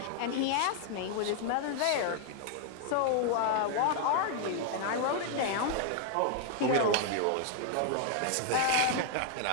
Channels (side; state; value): both; different; correlation 0.00